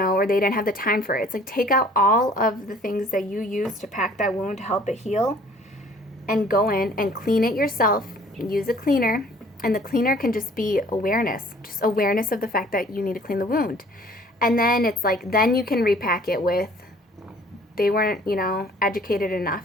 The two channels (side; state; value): both; normal; correlation 0.54